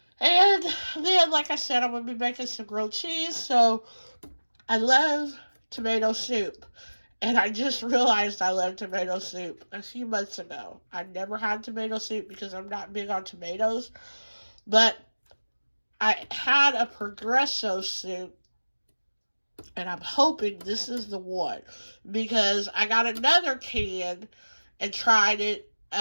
And then, like I said, I'm going to be making some grilled cheese. So I love tomato soup. And I just realized I love tomato soup a few months ago. I never had tomato soup because I'm not big on tomatoes. But I had a Progresso soup, and I'm hoping this is the one, because I got another can and tried it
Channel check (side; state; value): both; inverted; correlation -1.00